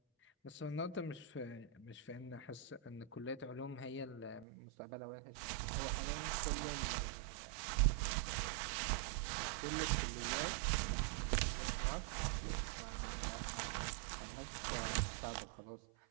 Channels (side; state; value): left; drops out; at 4.5 s